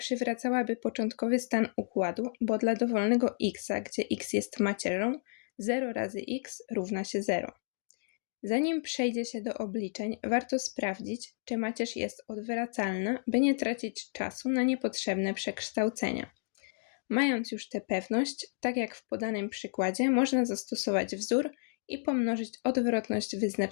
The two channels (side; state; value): right; silent; digital silence